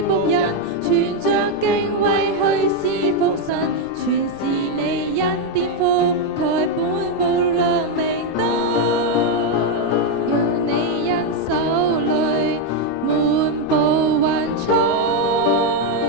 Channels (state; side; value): noise; left; rumble, 23 dB below the sound